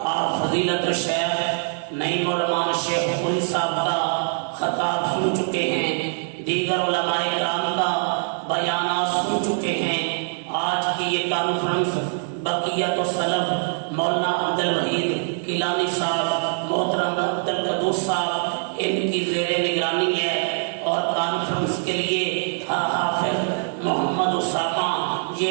آپ فضیلت شیخ نعیم الرحمان شیخ پوری صاحب کا خطاب سن چکے ہیں، دیگر علماء کرام کا بیانات سن چکے ہیں۔ آج کی یہ کانفرنس بقیت السلف مولانا عبدالوحید کیلانی صاحب، محترم عبدالقدوس صاحب، ان کی زیر نگرانی ہے، اور کانفرنس کے لیے حافظ محمد اسامہ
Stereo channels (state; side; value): silent; left; 59 dB below the other